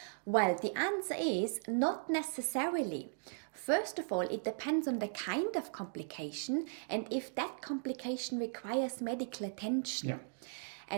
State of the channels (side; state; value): left; silent; digital silence